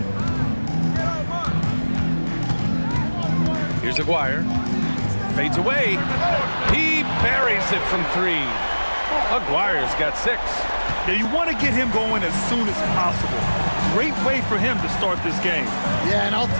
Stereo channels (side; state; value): both; inverted; correlation -1.00